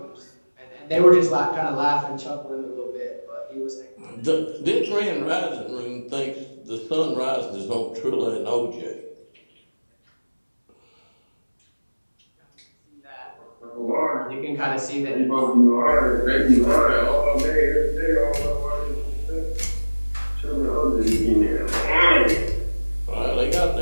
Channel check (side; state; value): both; inverted; correlation -1.00